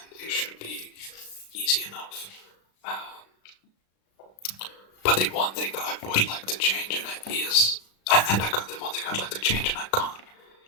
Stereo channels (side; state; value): right; late; 36 ms